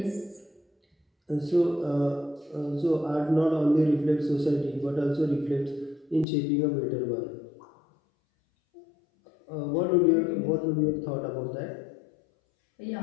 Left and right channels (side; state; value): right; drops out; at 6.2 s